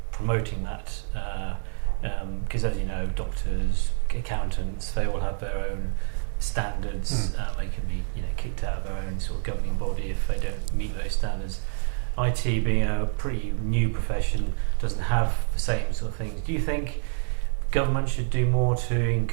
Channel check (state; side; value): silent; left; 60 dB below the other